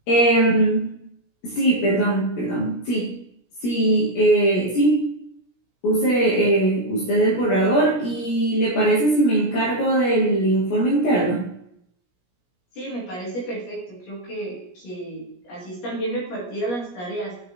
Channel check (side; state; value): right; late; 17 ms